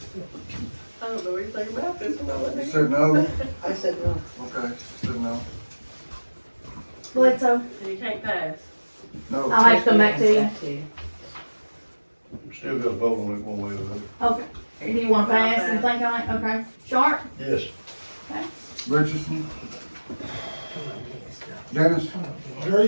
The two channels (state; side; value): inverted; both; correlation -1.00